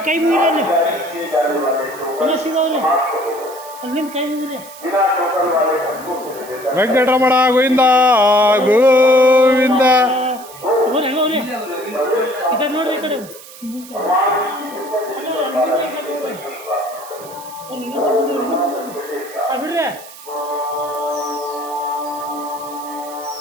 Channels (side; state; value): right; noise; hiss, 18 dB below the sound